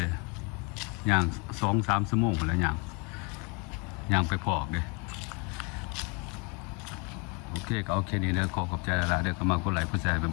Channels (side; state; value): right; quieter; 29.5 dB